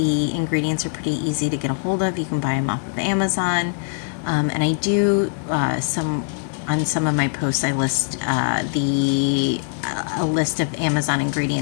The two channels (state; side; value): silent; right; 64 dB below the other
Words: ingredients are pretty easy to get a hold of. You can buy them off of Amazon. And I do some on some of my posts. I list a list of Amazon